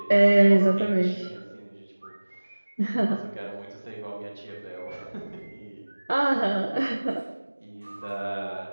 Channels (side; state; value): both; inverted; correlation -1.00